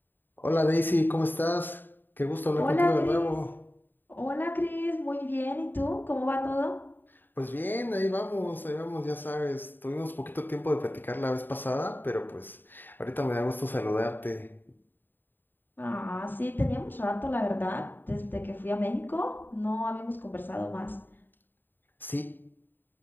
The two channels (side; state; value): right; late; 0.093 ms